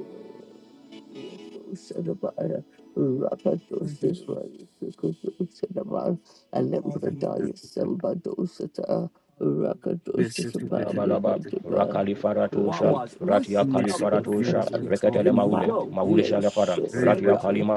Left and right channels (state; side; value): identical; both; correlation 1.00